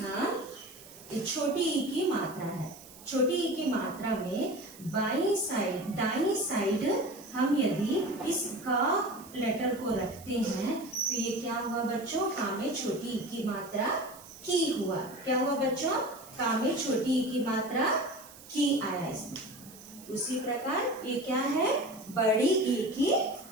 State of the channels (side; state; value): right; noise; hiss, 19 dB below the sound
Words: ये छोटी ई की मात्रा है, छोटी ई की मात्रा में बाईं साइड दाईं साइड हम यदि इस का लेटर को रखते हैं तो ये क्या हुआ बच्चों, का में छोटी ई की मात्रा की हुआ। क्या हुआ बच्चों, का में छोटी ई की मात्रा की आया इसमें। उसी प्रकार ये क्या है, बड़ी ई की